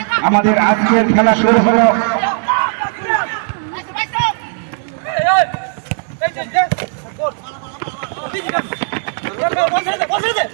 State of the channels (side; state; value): left; silent; 69 dB below the other